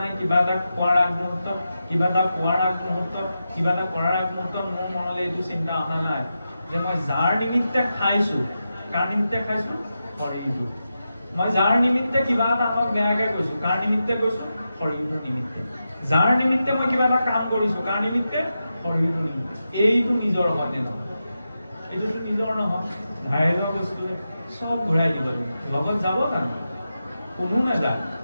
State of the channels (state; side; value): inverted; both; correlation -0.89